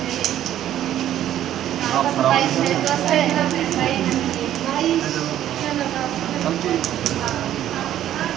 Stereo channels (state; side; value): quieter; left; 11.8 dB